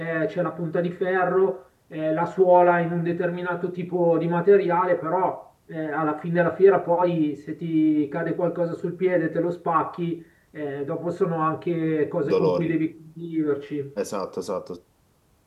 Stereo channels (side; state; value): both; identical; correlation 1.00